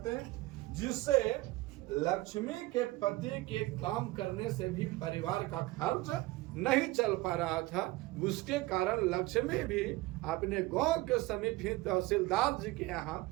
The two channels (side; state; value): left; quieter; 19.8 dB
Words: हैं, जिससे लक्ष्मी के पति के काम करने से भी परिवार का खर्च नहीं चल पा रहा था। उसके कारण लक्ष्मी भी अपने गांव के समीप ही तहसीलदार जी के यहाँ